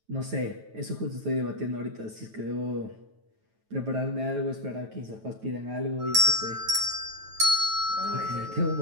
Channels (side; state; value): left; late; 9.2 ms